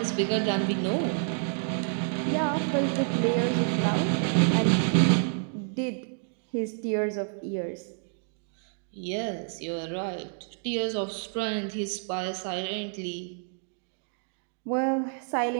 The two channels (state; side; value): silent; left; 58 dB below the other